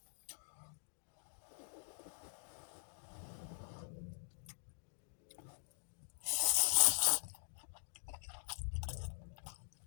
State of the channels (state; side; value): silent; right; digital silence